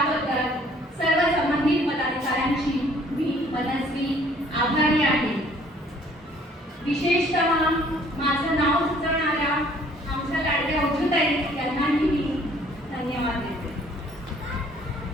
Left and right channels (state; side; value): normal; both; correlation 0.58